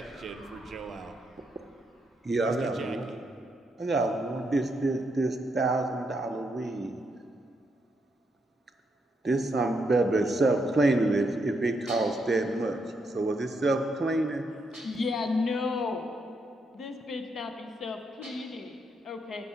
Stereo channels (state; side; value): normal; both; correlation 0.79